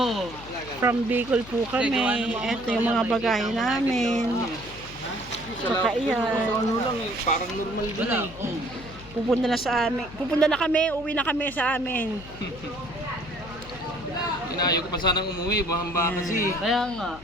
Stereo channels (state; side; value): noise; left; hum, 17 dB below the sound